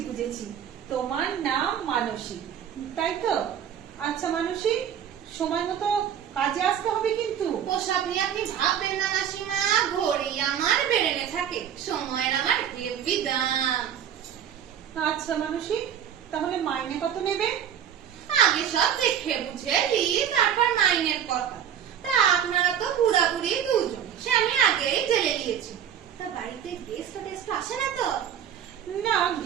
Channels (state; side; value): quieter; left; 9.1 dB